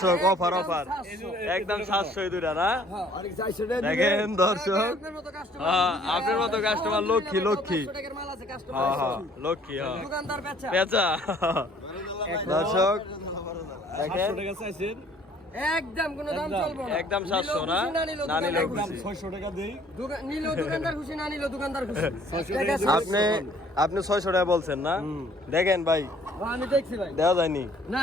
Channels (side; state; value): both; normal; correlation 0.58